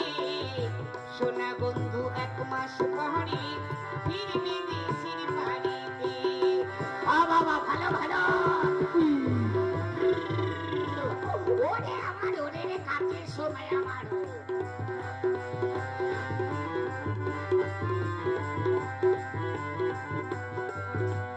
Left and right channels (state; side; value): identical; both; correlation 1.00